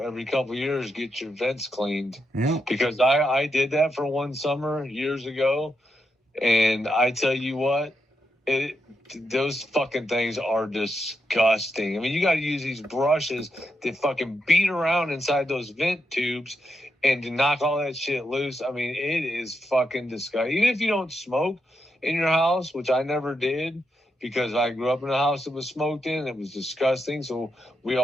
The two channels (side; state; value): both; normal; correlation 0.83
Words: couple of years get your vents cleaned. Yeah. Because I did that for one summer years ago, and I tell you what, those fucking things are disgusting. I mean, you got to use these brushes that fucking beat around inside those vent tubes and to knock all that shit loose. I mean, it is fucking disgusting. Even if you don't smoke in your house, which I never did, because I grew up in a house that was smoked in, it was disgusting. So we